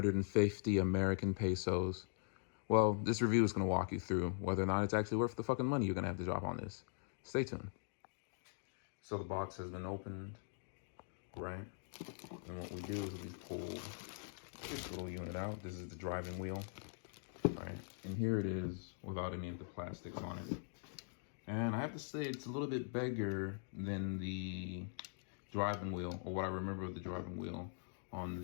American pesos? Well, this review is going to walk you through whether or not it's actually worth the fucking money you're going to have to drop on this. Stay tuned. So the box has been opened, right? And what we do is we pull this little unit out. This is the driving wheel, right? And here it is without any of the plastics on it. And I have to say it's a little bit bigger than the driving wheel, or what I remember of the driving wheel on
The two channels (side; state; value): right; silent; digital silence